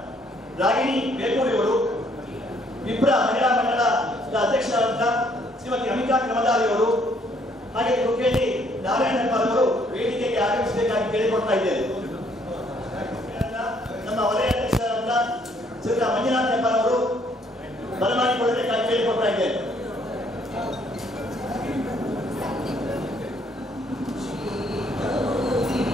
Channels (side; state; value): both; normal; correlation 0.66